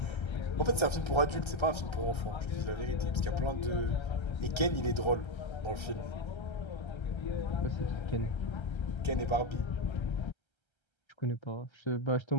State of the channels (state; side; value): late; right; 1.3 ms